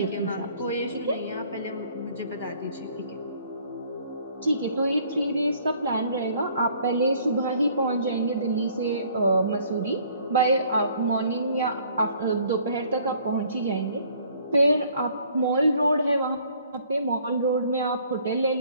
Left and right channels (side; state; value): both; inverted; correlation -0.59